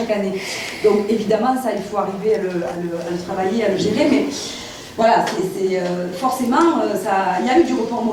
année. Donc évidemment, ça, il faut arriver à le travailler, à le gérer, mais voilà, forcément, il y a eu du report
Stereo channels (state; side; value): identical; both; correlation 1.00